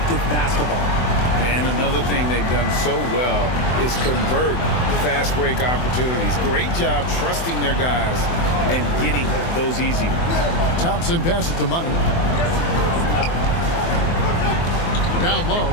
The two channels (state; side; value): late; right; 24 ms